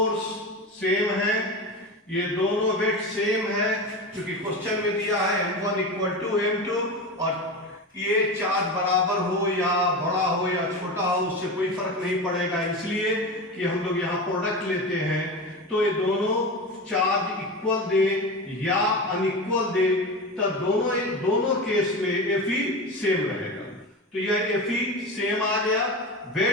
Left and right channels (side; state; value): both; normal; correlation 0.24